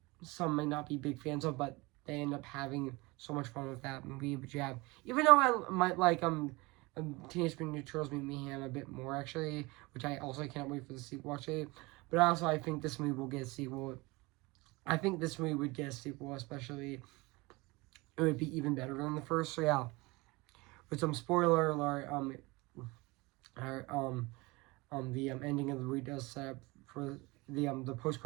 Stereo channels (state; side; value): quieter; left; 23.8 dB